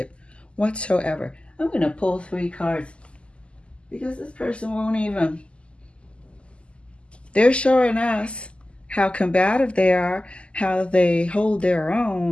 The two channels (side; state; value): right; late; 0.054 ms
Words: whatsoever. I'm going to pull 3 cards because this person won't even. They're showing us how combative they are, how they hold their